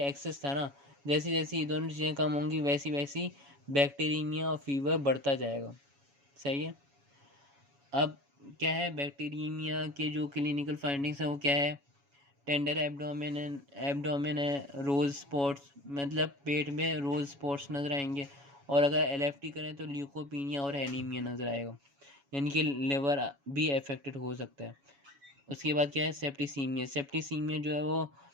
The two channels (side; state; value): left; late; 7.1 ms